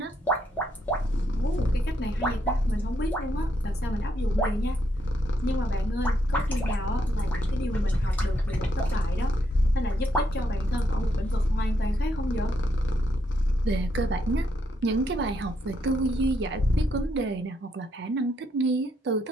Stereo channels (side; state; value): both; normal; correlation 0.76